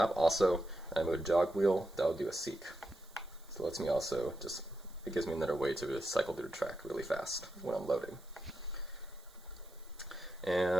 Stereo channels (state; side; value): noise; right; hiss, 26 dB below the sound